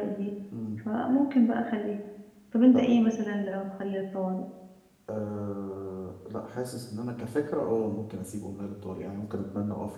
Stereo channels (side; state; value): both; identical; correlation 1.00